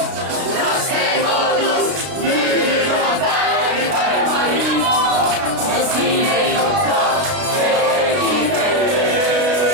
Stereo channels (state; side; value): late; left; 33 ms